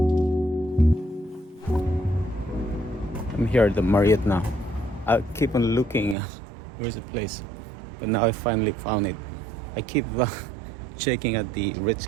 I'm here at the Marriott now. I keep on looking, where's the place? But now I finally found it. I keep checking at the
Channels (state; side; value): drops out; left; at 6.2 s